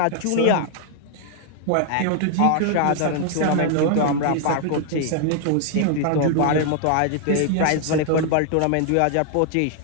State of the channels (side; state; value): both; different; correlation 0.00